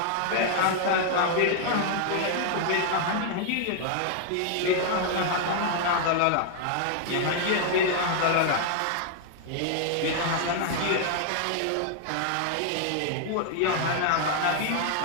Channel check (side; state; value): both; different; correlation 0.00